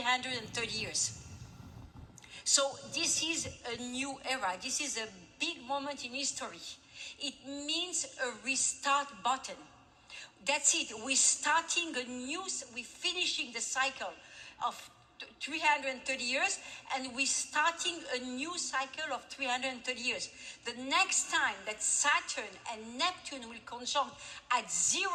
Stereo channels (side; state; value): both; identical; correlation 1.00